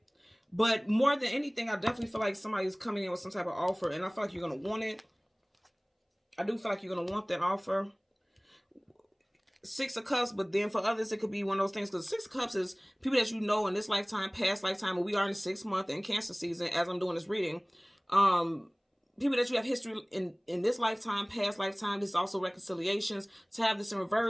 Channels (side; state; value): both; identical; correlation 1.00